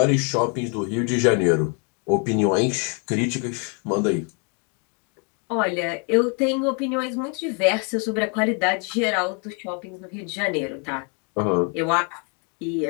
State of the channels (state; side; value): quieter; right; 37.2 dB